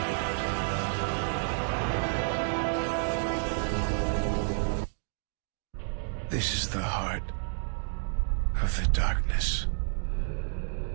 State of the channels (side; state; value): left; silent; digital silence